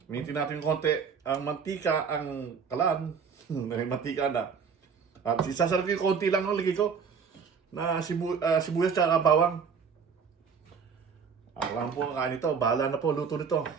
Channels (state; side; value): quieter; left; 6.2 dB